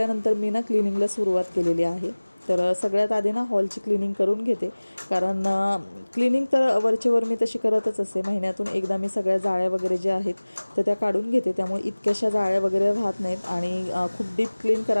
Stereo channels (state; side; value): inverted; both; correlation -1.00